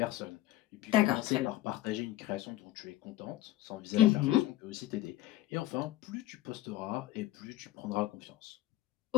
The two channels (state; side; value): quieter; right; 15.0 dB